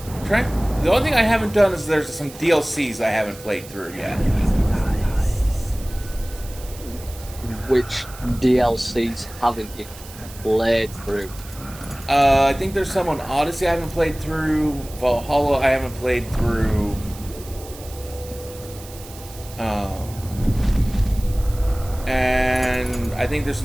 The only thing I haven't done is there's some DLCs I haven't played through yet. Which DLCs haven't you played through? I think there's some on Odyssey I haven't played through. Valhalla I haven't played through. And I think there's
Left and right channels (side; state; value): right; noise; hiss, 17 dB below the sound